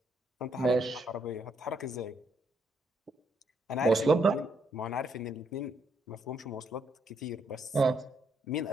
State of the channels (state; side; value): normal; both; correlation 0.74